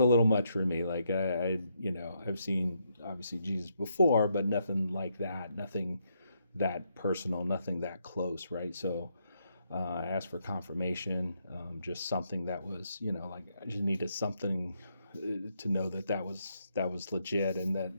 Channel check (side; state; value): both; inverted; correlation -0.77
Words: little much for me. Like, I've seen, obviously, Jesus before, but nothing like that, nothing that personal, nothing that close, right? So I asked for confirmation, just something that was, like, I just needed something to know that was legit, and that,